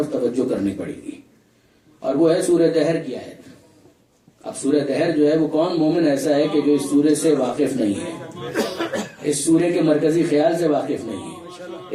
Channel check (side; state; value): both; identical; correlation 1.00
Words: توجہ کرنی پڑے گی, اور وہ ہے سورہ دہر کی آیت. اب سورہ دہر جو ہے وہ کون مومن ایسا ہے کہ جو اس سورے سے واقف نہیں ہے, اس سورے کے مرکزی خیال سے واقف نہیں ہے,